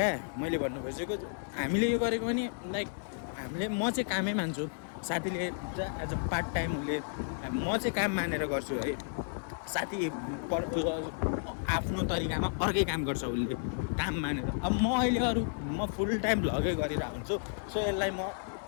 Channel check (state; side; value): silent; right; 56 dB below the other